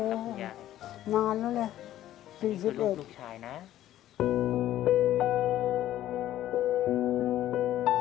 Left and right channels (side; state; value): right; quieter; 13.1 dB